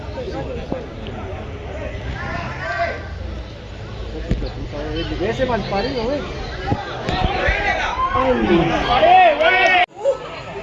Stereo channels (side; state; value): both; identical; correlation 1.00